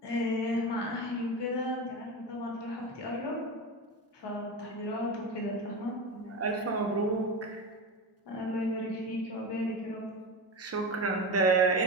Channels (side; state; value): both; normal; correlation 0.23